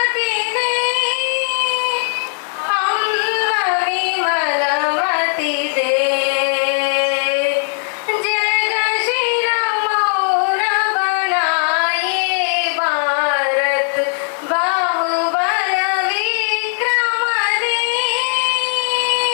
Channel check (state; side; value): silent; right; digital silence